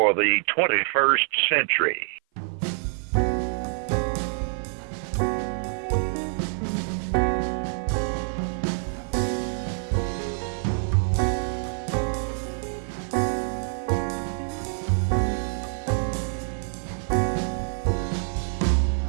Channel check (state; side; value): silent; left; 55 dB below the other